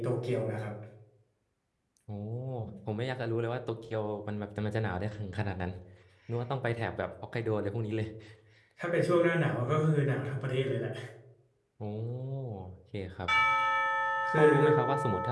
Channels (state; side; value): identical; both; correlation 1.00